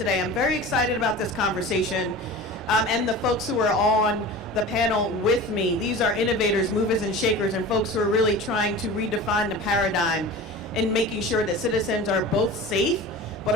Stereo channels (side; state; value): both; normal; correlation 0.35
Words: I'm very excited about this conversation and the folks who are on the panel with me. These are innovators, movers and shakers, and folks who are really trying to redefine the paradigm in making sure that citizens are both safe, but